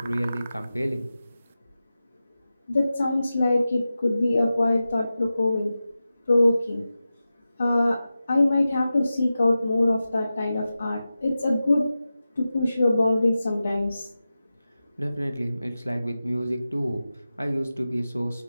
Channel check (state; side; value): inverted; both; correlation -0.93